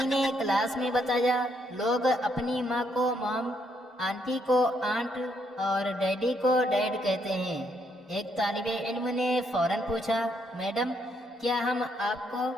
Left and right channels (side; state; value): both; normal; correlation 0.74